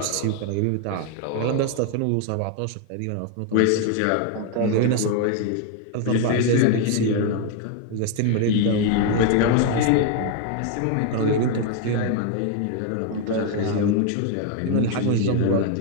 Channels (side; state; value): both; different; correlation 0.01